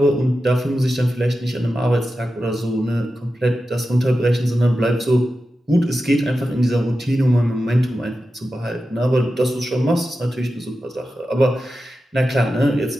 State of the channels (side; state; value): both; normal; correlation 0.92